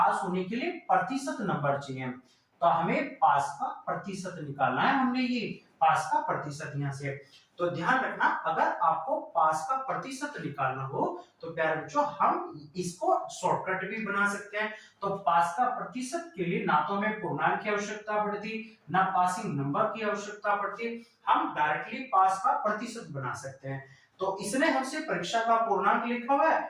होने के लिए प्रतिशत नंबर चाहिए। तो हमें पास का प्रतिशत निकालना है, हमने ये पास का प्रतिशत यहाँ से। तो ध्यान रखना, अगर आपको पास का प्रतिशत निकालना हो, तो प्यारे बच्चों हम इसको शॉर्टकट भी बना सकते हैं। तो पास का प्रतिशत के लिए ना तो हमें पूर्णांक की आवश्यकता पड़ती, ना पासिंग नंबर की आवश्यकता पड़ती, हम डायरेक्टली पास का प्रतिशत बना सकते हैं। तो इसने हमसे परीक्षा का पूर्णांक लिखा हुआ है,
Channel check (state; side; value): identical; both; correlation 1.00